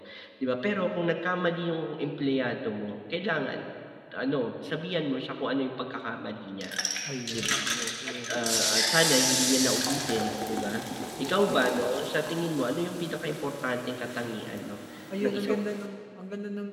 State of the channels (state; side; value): identical; both; correlation 1.00